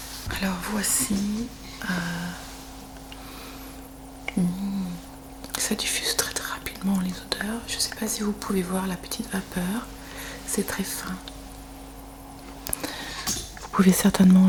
Alors voici, ça diffuse très très rapidement les odeurs. Je ne sais pas si vous pouvez voir la petite vapeur, c'est très fin. Vous pouvez certainement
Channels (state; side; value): identical; both; correlation 1.00